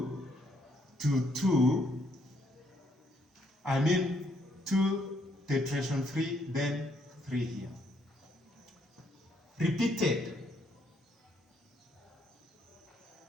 to 2, 2 tetration 3, then 3 here. Repeated.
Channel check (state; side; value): normal; both; correlation 0.72